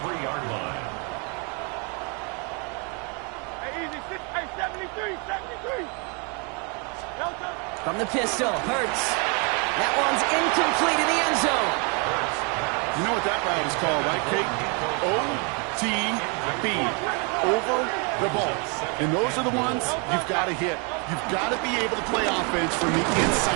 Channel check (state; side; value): quieter; left; 34.5 dB